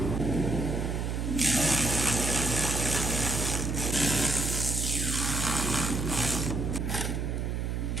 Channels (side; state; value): right; noise; hum, 1 dB below the sound